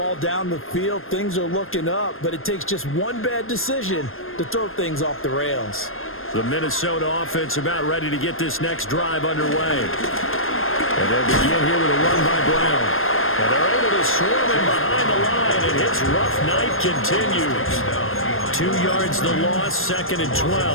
down the field. Things are looking up, but it takes just one bad decision to throw things off the rails. The Minnesota offense about ready to get this next drive underway. And they'll begin here with a run by Brown. And they're able to swarm him behind the line, and his rough night continues. 2 yards the loss, second and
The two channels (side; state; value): right; late; 0.60 ms